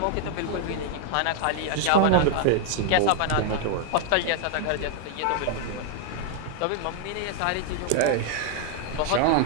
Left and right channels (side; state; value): both; different; correlation 0.00